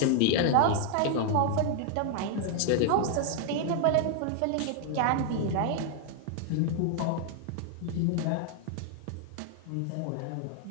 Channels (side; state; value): both; different; correlation 0.00